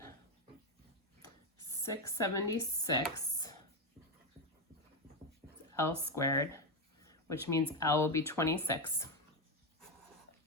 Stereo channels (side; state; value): both; normal; correlation 0.08